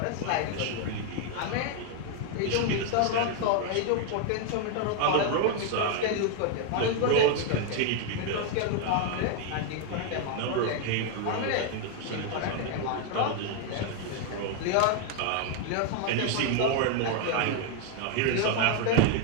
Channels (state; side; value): different; both; correlation 0.00